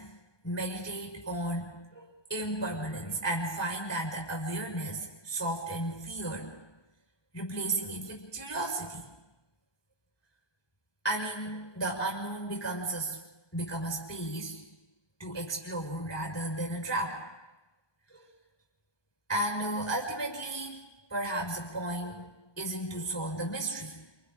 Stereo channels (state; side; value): late; right; 1.2 ms